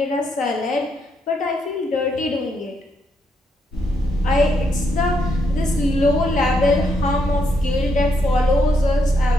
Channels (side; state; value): both; normal; correlation 0.77